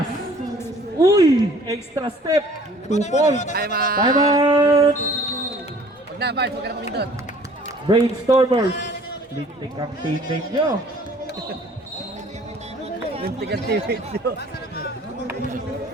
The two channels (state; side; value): normal; both; correlation 0.53